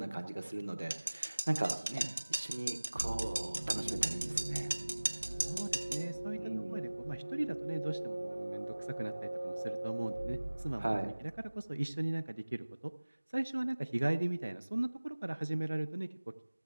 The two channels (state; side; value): inverted; both; correlation -1.00